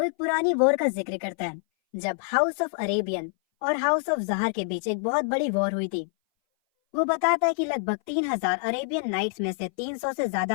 एक पुरानी वॉर का जिक्र करता है जब हाउस ऑफ अरेबियन और हाउस ऑफ जहर के बीच एक बहुत बड़ी वॉर हुई थी। वो बताता है कि लगभग 3000 अरेबियन नाइट्स में से 300 से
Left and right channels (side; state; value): right; silent; 58 dB below the other